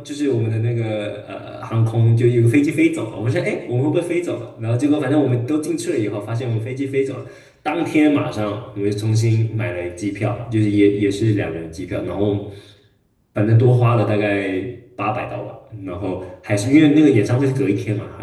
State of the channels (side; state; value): both; identical; correlation 1.00